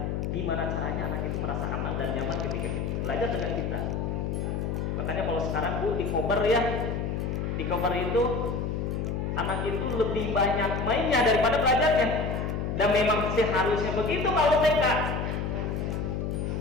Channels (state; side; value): noise; left; hum, 1 dB below the sound